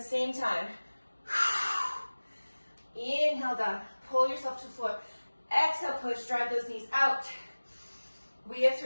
same time. Inhale down, pull yourself to the floor. Exhale, push, drive those knees out. We have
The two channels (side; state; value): both; inverted; correlation -1.00